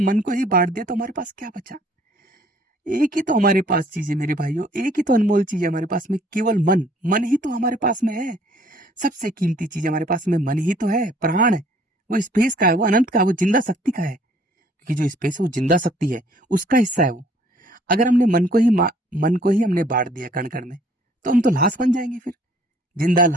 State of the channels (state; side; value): normal; both; correlation 0.59